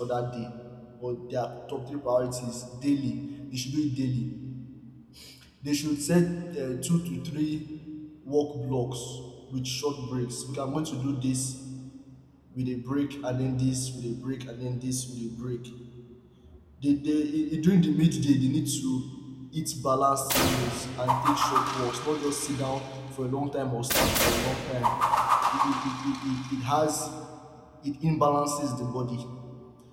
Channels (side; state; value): both; identical; correlation 1.00